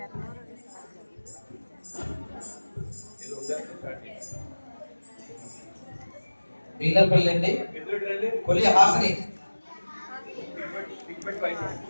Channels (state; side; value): inverted; both; correlation -1.00